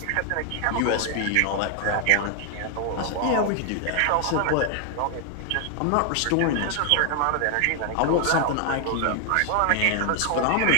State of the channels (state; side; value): different; both; correlation 0.00